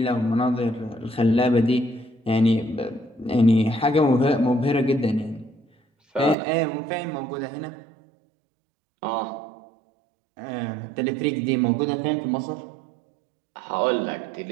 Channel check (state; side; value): drops out; left; at 6.4 s